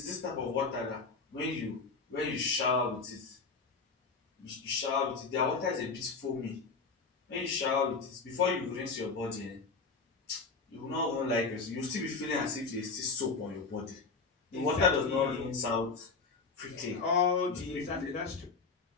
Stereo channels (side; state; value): right; quieter; 4.5 dB